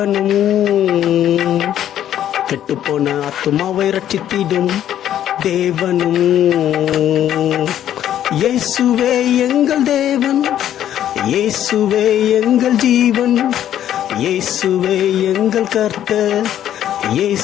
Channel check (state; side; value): quieter; right; 11.1 dB